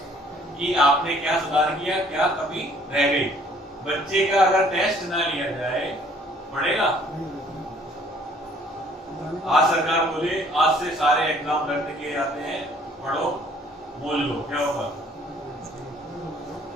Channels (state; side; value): normal; both; correlation 0.58